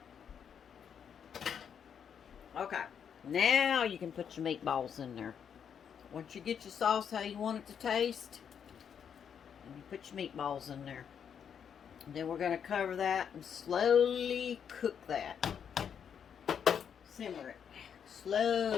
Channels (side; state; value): right; quieter; 7.8 dB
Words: Okay, now you can put your meatballs in there. Once you get your sauce how you want it to taste, you put your meatballs in there. And then we're going to cover that and slowly cook that. Simmer it